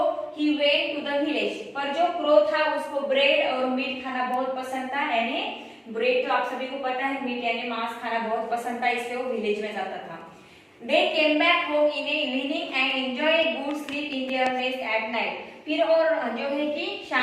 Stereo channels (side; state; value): both; identical; correlation 1.00